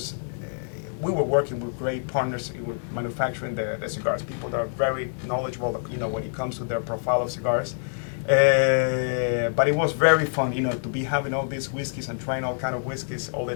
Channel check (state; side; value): silent; right; digital silence